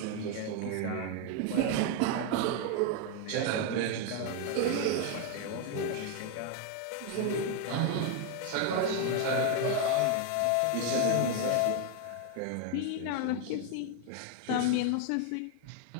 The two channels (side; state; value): both; different; correlation 0.01